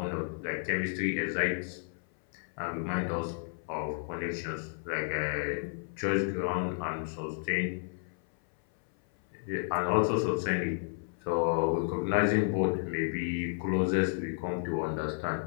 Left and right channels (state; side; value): silent; right; 56 dB below the other